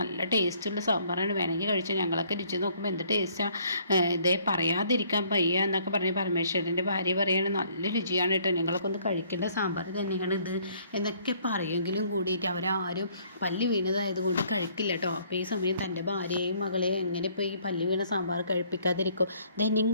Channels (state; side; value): inverted; both; correlation -0.63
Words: നല്ല ടേസ്റ്റുള്ള സാമ്പാറാണ്, വേണമെങ്കിൽ കഴിച്ചു, ഞങ്ങളൊക്കെ രുചി നോക്കുമ്പോൾ എന്ത് ടേസ്റ്റാണ്, ഇതേ പറയാതിരിക്കാൻ വയ്യ എന്നൊക്കെ പറഞ്ഞ് പരമേശ്വരൻ്റെ ഭാര്യ പറയാണ് നല്ല രുചിയാണ് കേട്ടോ, ഞങ്ങളൊക്കെ ഒന്ന് കഴിക്കേണ്ട സാമ്പാർ തന്നെയാണ് ഇത് എന്നൊക്കെ പറയെങ്കിലും കൂടിയിട്ട് അവരാരും പല്ലി വീണതായതുകൊണ്ട് കഴിക്കില്ല കേട്ടോ. അപ്പോൾ ഈ സമയം തൻ്റെ ഭാര്യയെയും മകളെയും എങ്ങനെ ഇപ്പോൾ ഈ പല്ലി വീണ സാമ്പാർ കഴിപ്പിക്കാതിരിക്കും.